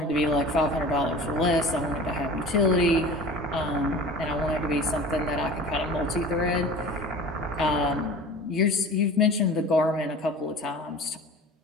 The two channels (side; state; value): both; normal; correlation 0.39